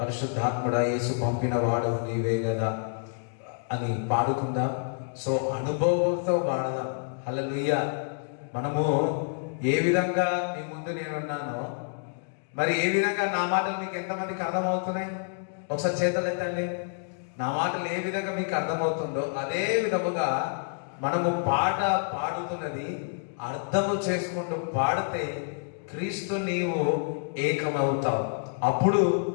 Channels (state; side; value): silent; right; digital silence